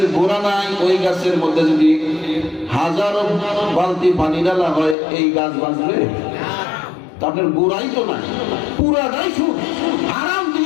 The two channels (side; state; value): right; drops out; at 5.0 s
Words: গোড়া নাই, ওই গাছের মধ্যে যদি হাজারো বালতি পানি ঢালা হয়, এই গাছ বাঁচবে? আপনার গোড়াই তো নাই, পুরাটাই সুদ, হারাম